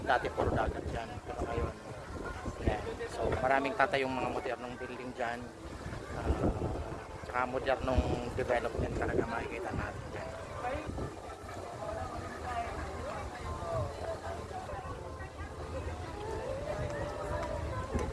Dati puro dagat diyan, pero ngayon yan. So maraming tatayong mga modernong building diyan. Tsaka modernong development talaga makikita natin diyan.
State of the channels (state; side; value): identical; both; correlation 1.00